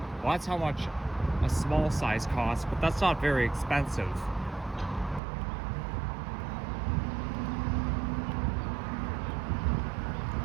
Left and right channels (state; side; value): drops out; left; at 5.2 s